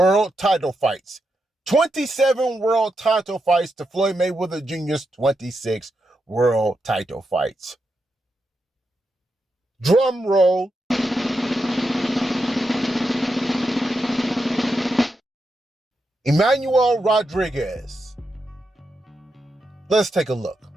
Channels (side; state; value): both; normal; correlation 0.85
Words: title fights. 27 world title fights to Floyd Mayweather Jr.'s 26 world title fights. Drum roll. Emmanuel Rodriguez. Let's take a look.